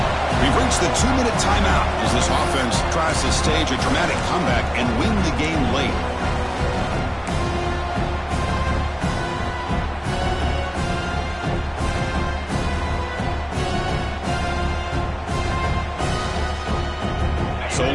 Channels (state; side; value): identical; both; correlation 1.00